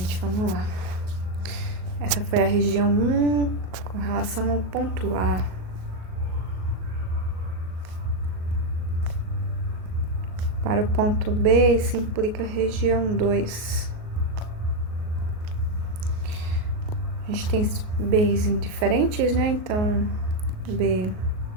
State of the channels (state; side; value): late; left; 38 ms